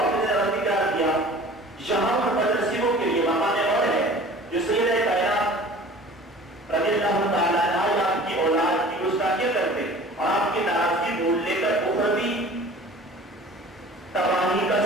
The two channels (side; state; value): both; normal; correlation 0.44